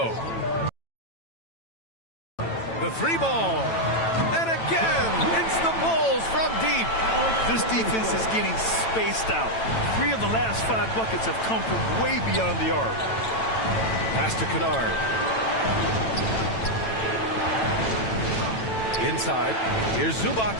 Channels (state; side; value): late; right; 9.0 ms